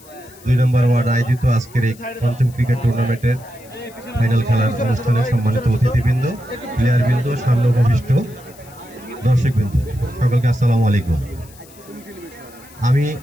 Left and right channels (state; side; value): noise; left; hiss, 24 dB below the sound